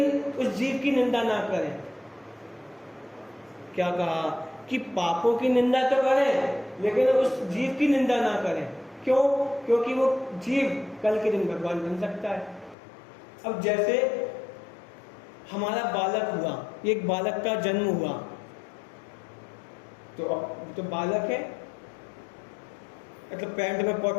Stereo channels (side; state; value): right; drops out; at 12.8 s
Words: उस जीव की निंदा ना करें। क्या कहा कि पापों की निंदा तो करें लेकिन उस जीव की निंदा ना करें। क्यों? क्योंकि वो जीव कल के दिन भगवान बन सकता है। अब जैसे हमारा बालक हुआ, एक बालक का जन्म हुआ, तो बालक है, मतलब पैंट में